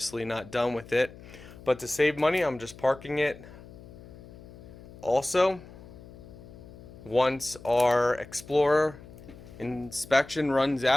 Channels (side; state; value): left; noise; hum, 18 dB below the sound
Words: not done with it, but to save money, I'm just parking it. Also, once our Explorer inspection runs